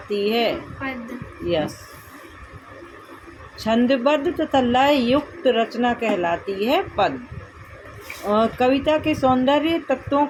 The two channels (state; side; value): identical; both; correlation 1.00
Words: है पद। यस, छंदबद्ध तथा लय युक्त रचना कहलाती है पद। कविता के सौंदर्य तत्वों